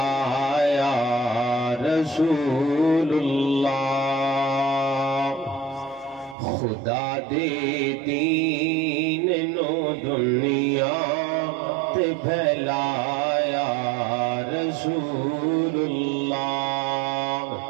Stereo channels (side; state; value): left; drops out; at 6.4 s